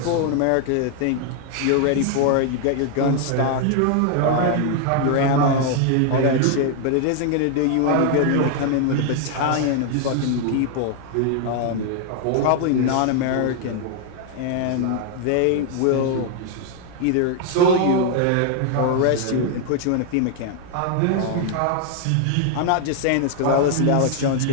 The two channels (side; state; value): both; different; correlation 0.00